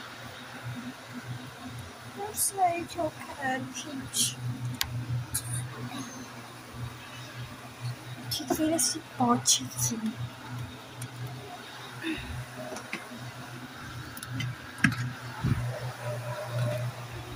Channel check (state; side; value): identical; both; correlation 1.00